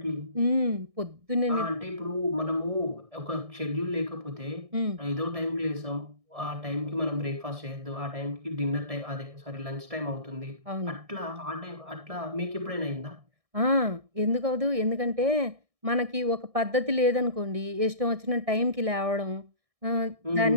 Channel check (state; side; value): late; left; 1.6 ms